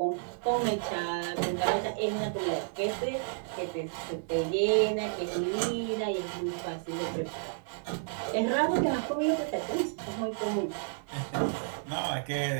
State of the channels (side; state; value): left; silent; digital silence